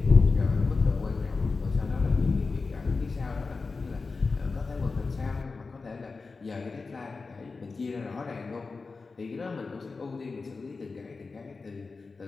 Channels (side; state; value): right; quieter; 4.2 dB